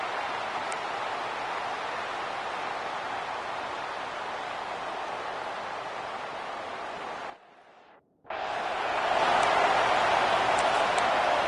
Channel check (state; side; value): identical; both; correlation 1.00